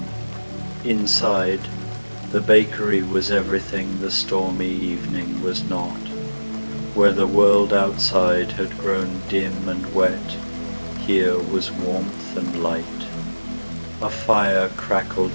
Inside, the bakery was everything the stormy evening was not. Where the world outside had grown dim and wet, here was warmth and light. A fire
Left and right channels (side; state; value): both; inverted; correlation -1.00